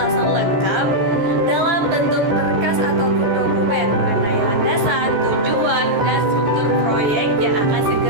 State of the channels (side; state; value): left; late; 14 ms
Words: lengkap dalam bentuk berkas ataupun dokumen mengenai landasan, tujuan, dan struktur proyek yang akan